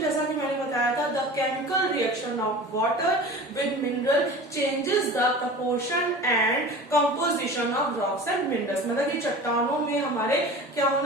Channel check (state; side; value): normal; both; correlation 0.37